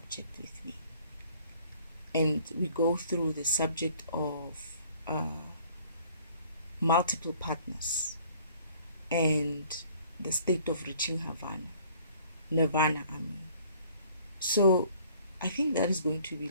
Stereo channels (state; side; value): inverted; both; correlation -0.56